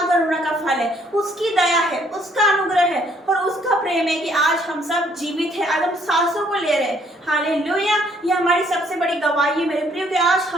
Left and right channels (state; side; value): normal; both; correlation 0.65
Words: का फल है, उसकी दया है, उसका अनुग्रह है और उसका प्रेम है कि आज हम सब जीवित हैं, आज हम सांसों को ले रहे हैं, हालेलुया। ये हमारी सबसे बड़ी गवाही है मेरे प्रियो कि आज